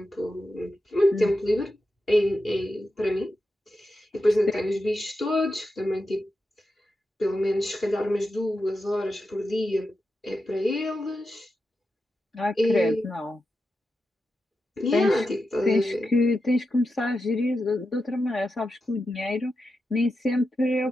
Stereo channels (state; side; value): normal; both; correlation 0.89